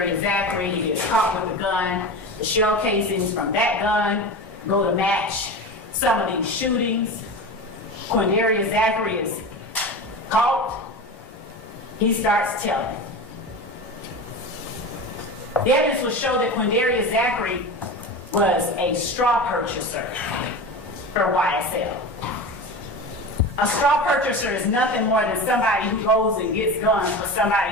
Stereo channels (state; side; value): normal; both; correlation 0.27